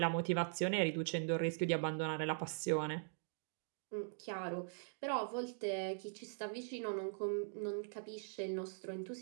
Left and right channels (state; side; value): silent; left; digital silence